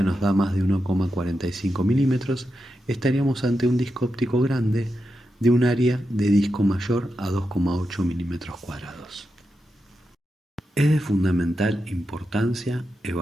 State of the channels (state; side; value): normal; both; correlation 0.88